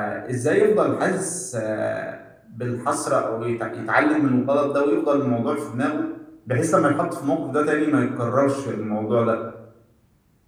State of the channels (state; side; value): identical; both; correlation 1.00